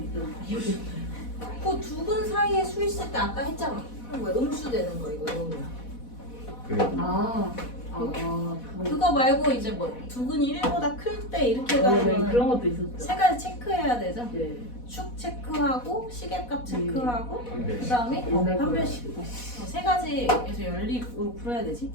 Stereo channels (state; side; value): late; right; 4.1 ms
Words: 있었는데 그 두 분 사이에 수 있을 때 아까 했잖아. 그럼 왜 음수 되는 거 이거 이러면. 그거 말고 이제 뭐 두근이 1보다 클 때 이렇게 네, 가면 그런 것도 있었죠. 세 가지 체크해야 되죠. 네. 축 체크하고 시계값 체크하고 네. 그다음에 옛날 판별식 세 가지에서 연립으로 풀어야 되지.